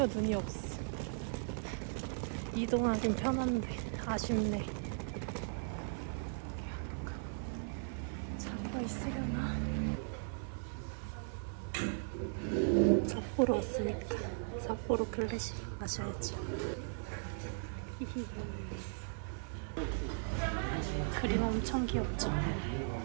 눈이 없어. 이동하긴 편한데 아쉽네. 차가 있으려나? 삿포로 왔으니까 삿포로 클래식 마셔야지. 히히. 그림 엄청 귀엽죠?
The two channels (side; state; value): left; silent; 53 dB below the other